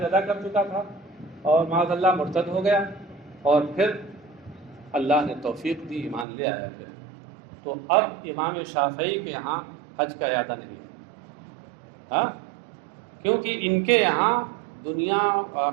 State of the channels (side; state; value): left; drops out; at 6.2 s